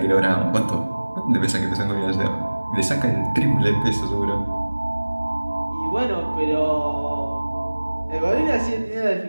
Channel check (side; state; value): both; inverted; correlation -1.00